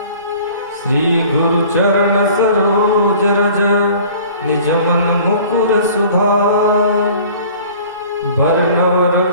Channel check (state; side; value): inverted; both; correlation -0.48